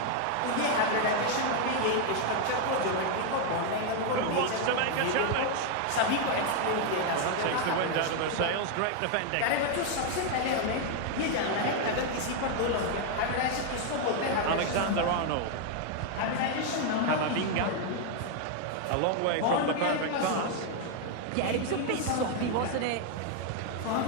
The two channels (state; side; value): different; both; correlation 0.00